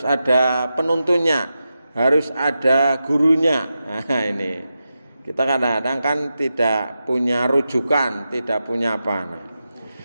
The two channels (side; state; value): both; inverted; correlation -0.90